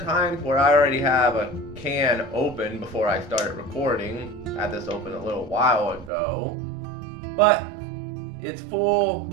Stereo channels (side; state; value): left; drops out; at 6.1 s